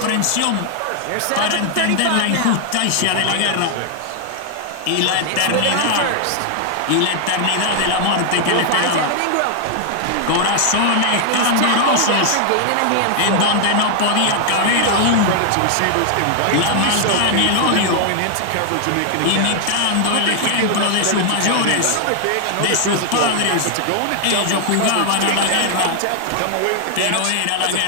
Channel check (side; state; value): both; different; correlation -0.01